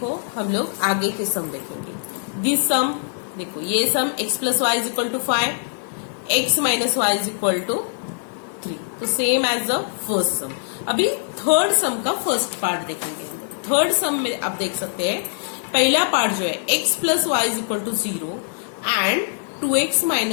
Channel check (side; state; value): right; silent; 64 dB below the other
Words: हम लोग आगे के सम देखेंगे। दिस सम देखो, ये sum x plus Y is equal to 5, x minus Y is equal to 3, तो same as the first sum. अभी थर्ड सम का फर्स्ट पार्ट देखेंगे। थर्ड सम में आप देख सकते हैं पहला पार्ट जो है x plus Y is equal to 0 and 2x